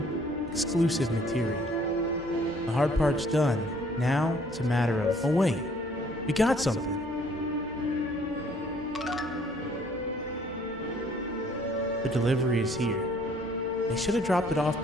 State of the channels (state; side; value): normal; both; correlation 0.60